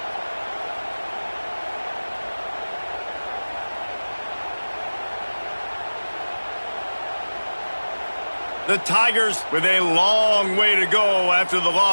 The Tigers with a long way to go after the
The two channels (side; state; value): both; inverted; correlation -1.00